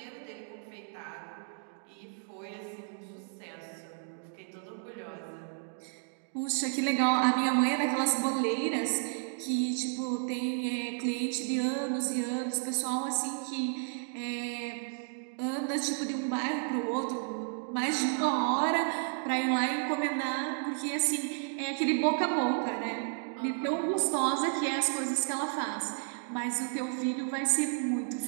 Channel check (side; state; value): left; silent; 56 dB below the other